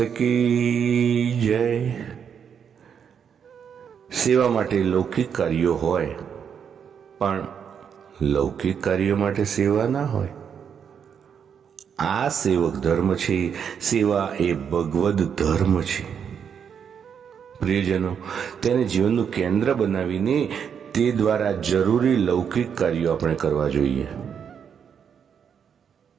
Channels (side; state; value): left; quieter; 7.5 dB